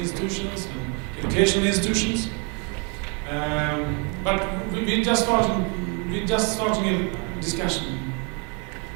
institutions and educational institutions. But we're just starting a discussion.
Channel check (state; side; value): quieter; left; 35.6 dB